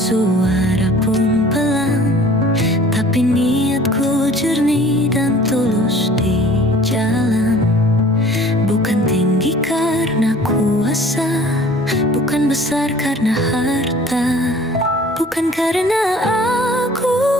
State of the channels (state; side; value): normal; both; correlation 0.50